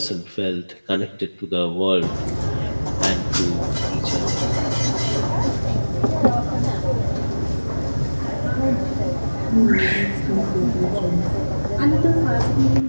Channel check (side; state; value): both; inverted; correlation -1.00